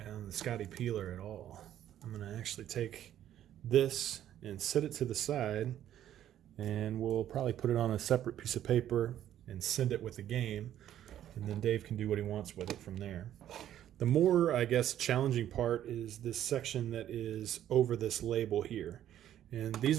on the Scotty peeler at all. I'm going to actually take this and set it to the side, and we'll probably put it on a separate piece of paper and send it with the game. And then Dave can do what he wants with it from there. The more, I guess, challenging part is this section that is over this label here. And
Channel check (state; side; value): quieter; left; 11.4 dB